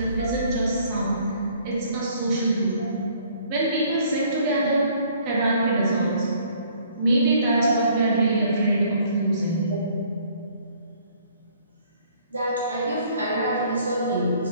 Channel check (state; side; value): inverted; both; correlation -0.60